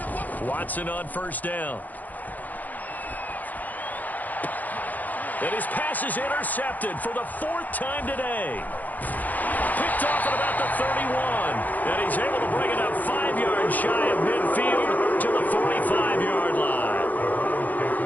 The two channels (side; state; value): right; late; 0.081 ms